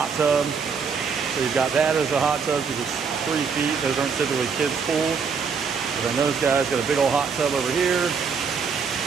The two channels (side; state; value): left; quieter; 5.8 dB